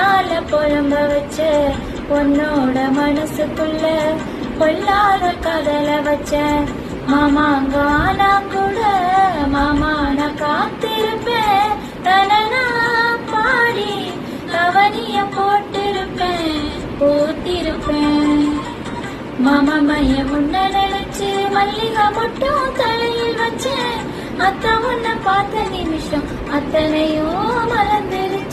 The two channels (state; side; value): identical; both; correlation 1.00